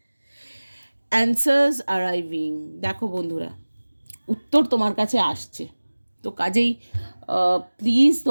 অ্যান্সার্স অ্যারাইভিং, দেখো বন্ধুরা উত্তর তোমার কাছে আসছে, তো কাজেই প্লিজ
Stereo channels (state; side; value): inverted; both; correlation -1.00